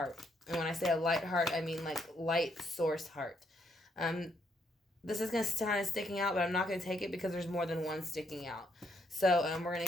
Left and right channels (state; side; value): normal; both; correlation 0.74